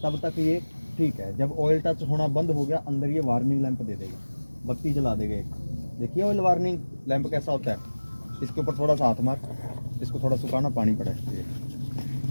तब तक ये ठीक है, जब ऑयल टच होना बंद हो गया, अंदर ये वार्निंग लैंप दे देगा, बत्ती जला देगा एक। देखिए ऑयल वार्निंग लैंप कैसा होता है, इसके ऊपर थोड़ा सा हाथ मार, इसको थोड़ा सुखाना, पानी पड़ा है,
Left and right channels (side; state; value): both; inverted; correlation -1.00